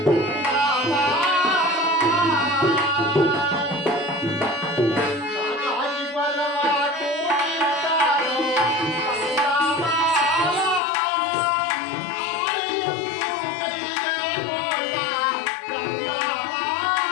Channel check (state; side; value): drops out; right; at 10.8 s